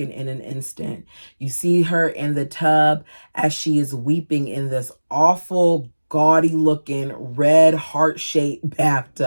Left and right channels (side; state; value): both; inverted; correlation -1.00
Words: in an instant. You see her in the tub as she is weeping in this awful, gaudy looking red heart-shaped